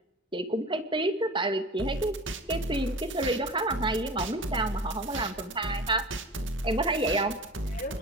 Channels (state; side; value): normal; both; correlation 0.36